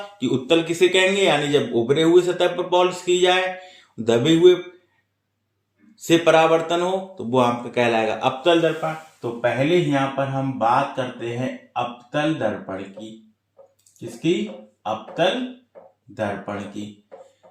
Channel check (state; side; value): identical; both; correlation 1.00